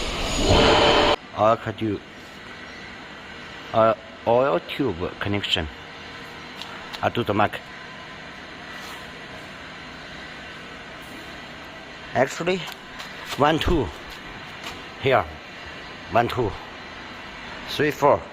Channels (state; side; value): identical; both; correlation 1.00